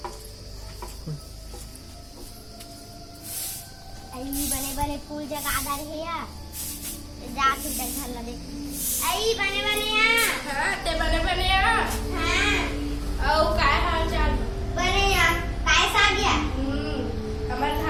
आई बने बने फूल जगा रहे या जात इधर घर लगे आई बने बने या हां ते बने या हां औ काय हाल चाल बने या काय सा गया हमर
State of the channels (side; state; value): both; identical; correlation 1.00